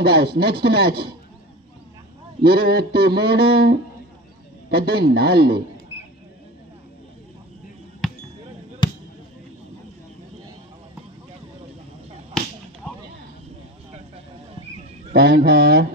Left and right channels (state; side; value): normal; both; correlation 0.31